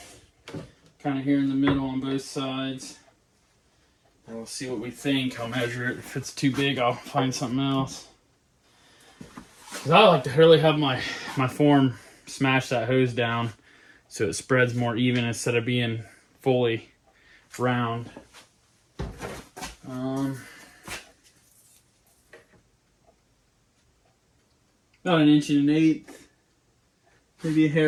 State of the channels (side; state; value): both; identical; correlation 1.00